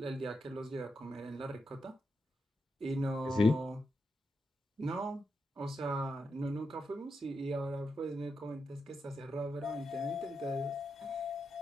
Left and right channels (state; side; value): normal; both; correlation 0.85